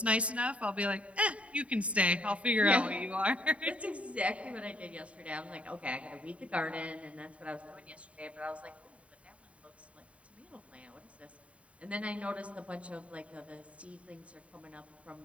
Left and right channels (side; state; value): left; late; 0.064 ms